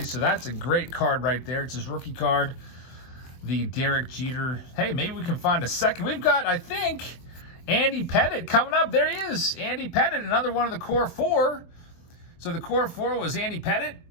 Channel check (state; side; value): late; right; 24 ms